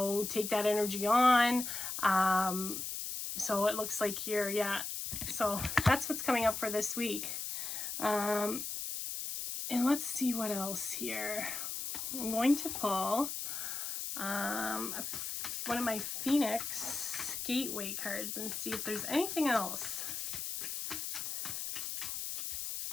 take that energy on. So it looks like here, yeah. So that's what's coming up for this week. And let's see what else here. I'm going to pull one of my Phoenix Gateway cards and see if there's anything else.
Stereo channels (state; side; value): noise; left; hiss, 4 dB below the sound